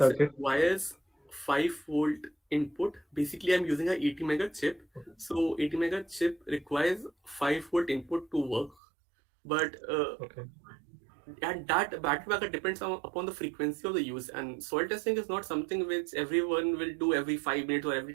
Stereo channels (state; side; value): drops out; left; at 8.8 s